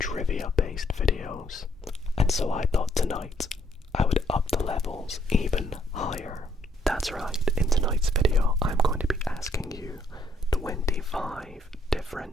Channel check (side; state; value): both; normal; correlation 0.69